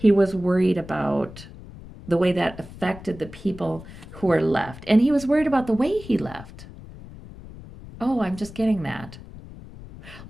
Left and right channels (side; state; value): left; noise; rumble, 16 dB below the sound